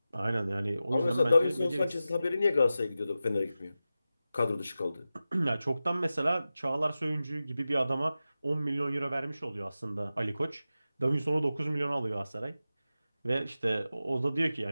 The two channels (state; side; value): inverted; both; correlation -0.93